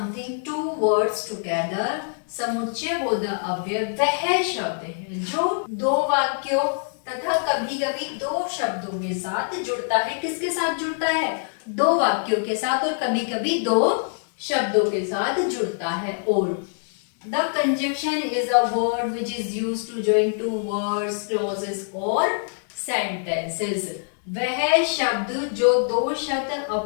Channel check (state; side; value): silent; right; digital silence